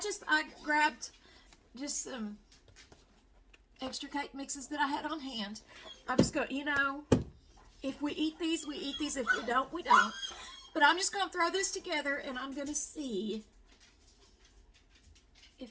grabbed just some extra cake mixes that I had on hand. I'm just going, if we eat these, we eat these. If we don't, we don't. But I'm just going to throw this together and I'm going to see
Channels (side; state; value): both; identical; correlation 1.00